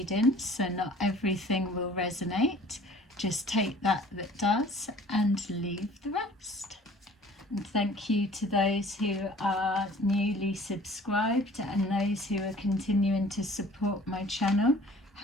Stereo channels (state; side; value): normal; both; correlation 0.50